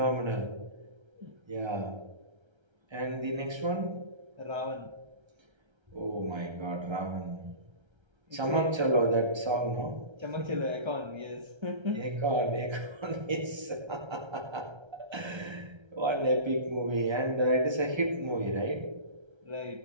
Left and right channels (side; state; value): left; late; 1.3 ms